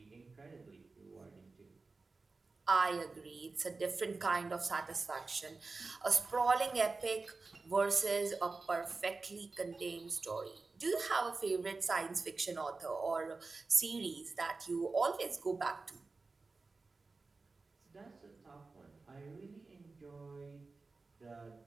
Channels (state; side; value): quieter; left; 3.9 dB